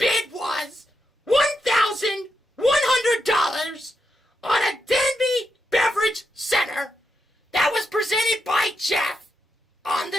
was $1,100 on a Denby Beverage Center that was presented by Jeff on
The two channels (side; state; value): both; normal; correlation 0.84